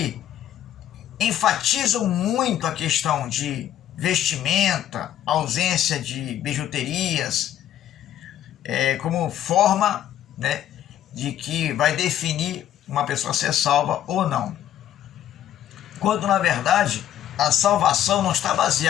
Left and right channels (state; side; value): quieter; right; 11.4 dB